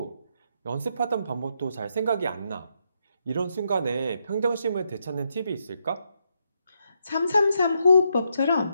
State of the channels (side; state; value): both; inverted; correlation -0.79